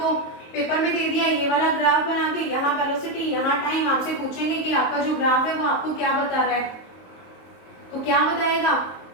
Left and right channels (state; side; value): late; right; 22 ms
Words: पेपर में दे दिया ये वाला ग्राफ बना के, यहाँ वेलोसिटी यहाँ टाइम, आपसे पूछेंगे कि आपका जो ग्राफ है वो आपको क्या बता रहा है, तो क्या बताएगा?